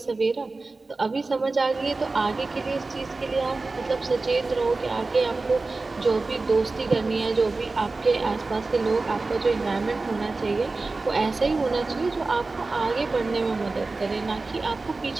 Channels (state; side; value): quieter; left; 3.6 dB